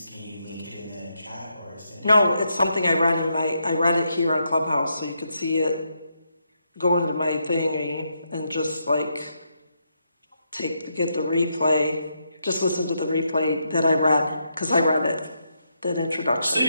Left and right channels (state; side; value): inverted; both; correlation -0.80